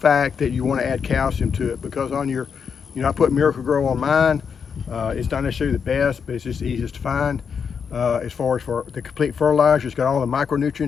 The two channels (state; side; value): quieter; right; 6.5 dB